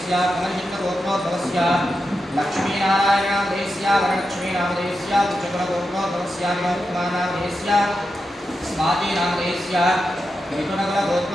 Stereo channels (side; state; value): both; normal; correlation 0.88